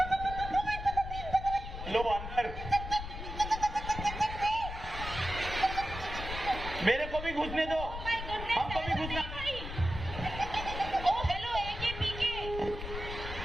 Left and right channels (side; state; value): left; noise; rumble, 8 dB below the sound